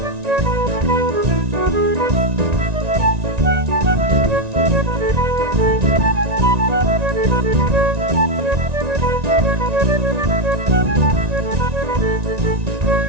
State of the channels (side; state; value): left; late; 1.9 ms